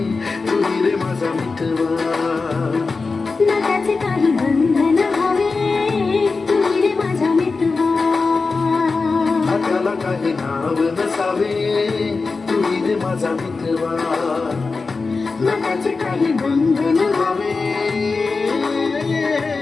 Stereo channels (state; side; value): quieter; right; 4.2 dB